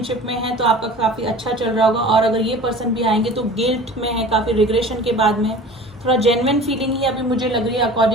में हैं तो आपका काफ़ी अच्छा चल रहा होगा, और अगर ये पर्सन भी आएंगे तो गिल्ट में है, काफ़ी रिग्रेशन के बाद में थोड़ा जेन्युइन फीलिंग ही अभी मुझे लग रही है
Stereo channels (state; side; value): normal; both; correlation 0.41